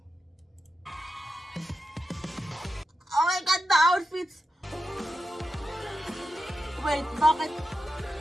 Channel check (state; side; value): normal; both; correlation 0.90